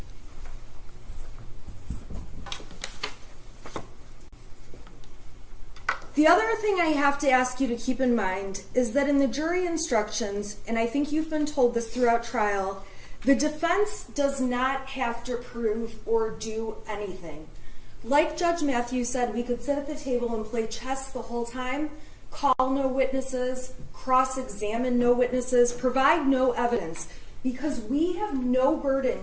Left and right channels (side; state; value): both; identical; correlation 1.00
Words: The other thing I have to ask you to keep in mind is that in the jury instructions, and I think you've been told this throughout trial, the defense does not have to prove or do anything. Like Judge Matthews said, we could sit at the table and play chess the whole time, call no witnesses, cross-examine no witnesses, provide no evidence, because we have no